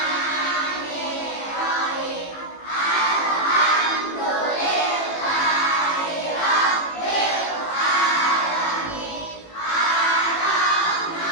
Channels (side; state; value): right; late; 18 ms